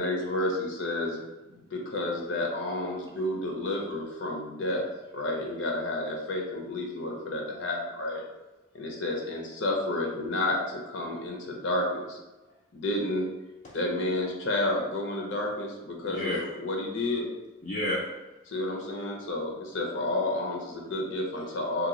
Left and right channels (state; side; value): normal; both; correlation 0.04